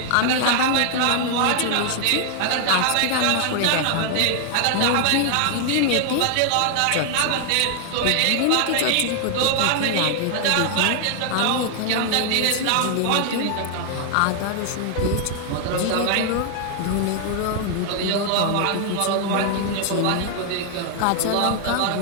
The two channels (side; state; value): both; different; correlation 0.00